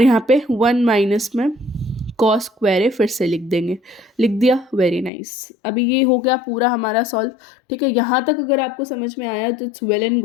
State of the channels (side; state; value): right; drops out; at 5.1 s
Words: यहाँ पे 1 माइनस में कॉस स्क्वायर ए फिर से लिख देंगे, लिख दिया, वेरी नाइस। अभी ये हो गया पूरा हमारा सॉल्व, ठीक है। यहाँ तक अगर आपको समझ में आया तो इट्स वेल एंड